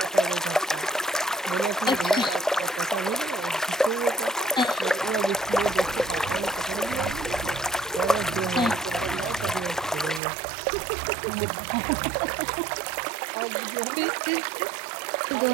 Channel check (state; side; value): drops out; left; at 10.2 s